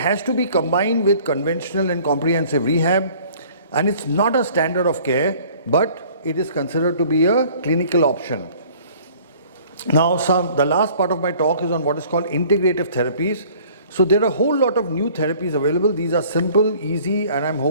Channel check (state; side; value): inverted; both; correlation -0.52